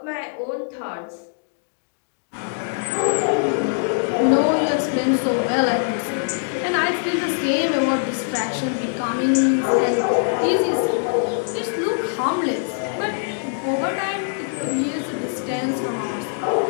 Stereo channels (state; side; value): silent; right; digital silence